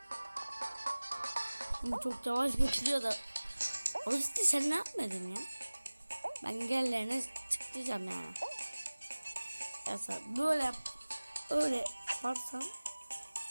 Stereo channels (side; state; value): both; inverted; correlation -1.00